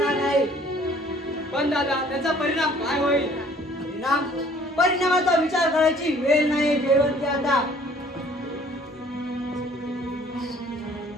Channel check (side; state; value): both; normal; correlation 0.56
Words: नाही. पण दादा त्याचा परिणाम काय होईल? परिणामाचा विचार करायची वेळ नाही जयवंती आता.